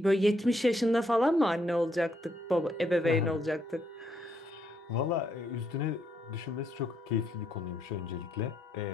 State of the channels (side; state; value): both; normal; correlation 0.74